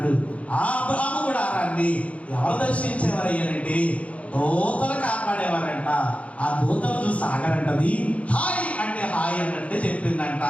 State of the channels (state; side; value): late; right; 0.065 ms